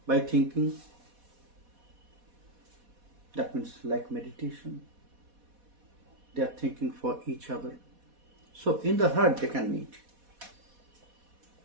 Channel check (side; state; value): left; late; 4.1 ms